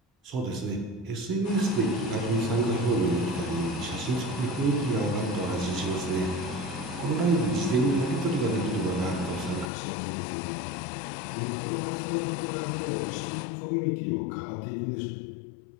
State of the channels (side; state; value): right; drops out; at 9.7 s